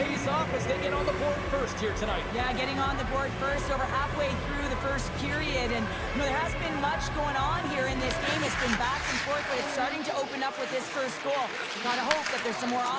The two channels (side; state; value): both; identical; correlation 1.00